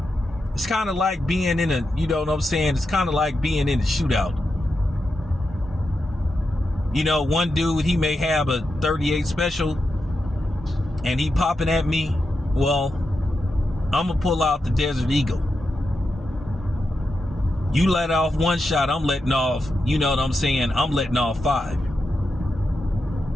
It's kind of like being in a, you know what I'm saying? It's kind of like being in a shootout. You know, one dude, he may have a 38 special and he popping at me. Well, I'm gonna pull out the Desert Eagle. You let off one shot, I'm letting off, you know what I'm saying? I'm letting off 5.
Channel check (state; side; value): normal; both; correlation 0.88